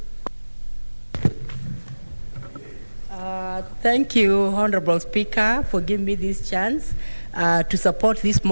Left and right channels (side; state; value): both; inverted; correlation -1.00